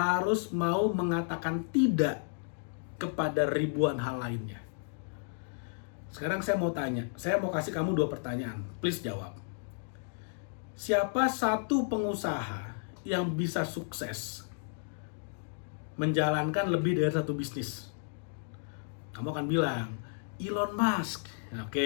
mau mengatakan tidak kepada ribuan hal lainnya. Sekarang saya mau tanya, saya mau kasih kamu dua pertanyaan, please jawab. Siapa satu pengusaha yang bisa sukses menjalankan lebih dari satu bisnis? Kamu akan bilang, Elon Musk.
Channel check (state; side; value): silent; right; digital silence